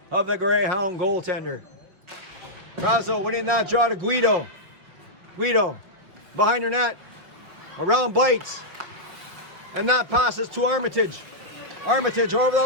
of the Greyhound goaltender. Brazo winning that draw to Guido. Guido behind her net. Around Bites. And that passes to Armitage. Armitage over the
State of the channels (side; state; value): left; late; 5.5 ms